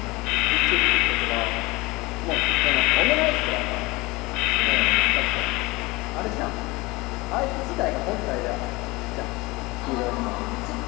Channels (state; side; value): quieter; right; 22.7 dB